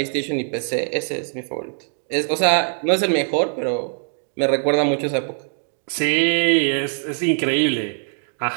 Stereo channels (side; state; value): left; silent; digital silence